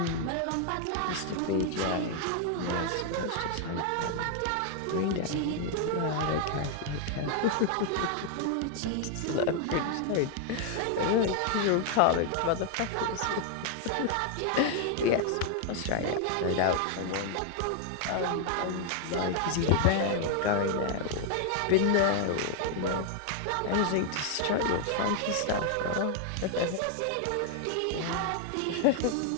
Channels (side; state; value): both; different; correlation 0.00